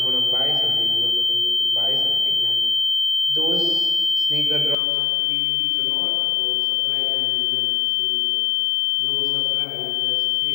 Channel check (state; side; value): drops out; right; at 4.8 s